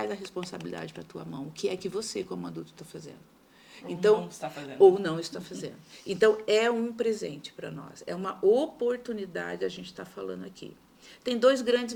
a responsabilidade para a tua mão. O que é que você, como adulto, está fazendo? Então, não está fazendo. Ou não está fazendo. Então, é um presente para nós. É uma oportunidade a gente está falando aqui. Tem 2 grandes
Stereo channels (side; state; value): both; identical; correlation 1.00